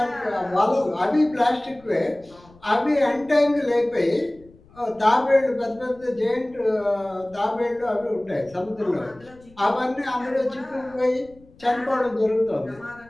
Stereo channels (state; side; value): noise; left; rumble, 26 dB below the sound